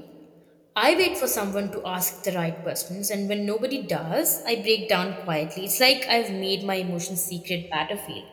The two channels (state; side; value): identical; both; correlation 1.00